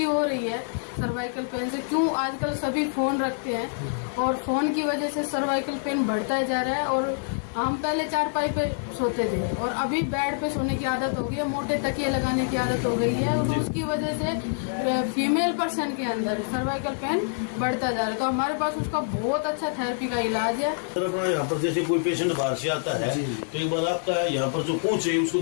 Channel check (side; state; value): right; silent; 61 dB below the other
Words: हो रही है सर्वाइकल पेन से। क्यों, आजकल सभी फोन रखते हैं और फोन की वजह से सर्वाइकल पेन बढ़ता जा रहा है। और हम पहले चारपाई पे सोते थे और अभी बेड पे सोने की आदत हो गई है, मोटे तकिए लगाने की आदत हो गई है, और उसकी वजह से फीमेल पर्सन के अंदर सर्वाइकल पेन बढ़ता जा रहा है। तो हमारे पास उसका बहुत अच्छा थेरेपी का इलाज है। सर अपना यहाँ पर जैसे कोई पेशेंट बाहर से आता है तो एक बार आपका यहाँ पर जो पहुंचे उसको